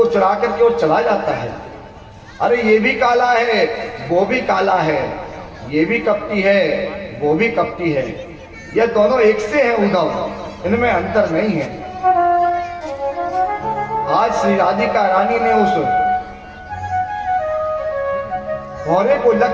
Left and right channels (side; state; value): both; identical; correlation 1.00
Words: चुरा करके और चला जाता है। अरे ये भी काला है, वो भी काला है, ये भी कपटी है, वो भी कपटी है, ये दोनों एक से हैं उद्धव, इनमें अंतर नहीं है। आज श्री राधिका रानी ने उस भौरे को